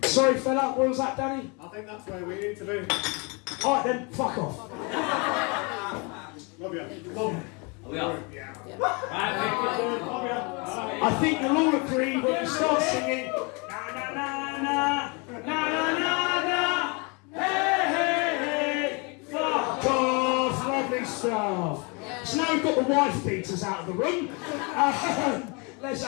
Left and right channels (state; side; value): quieter; right; 31.3 dB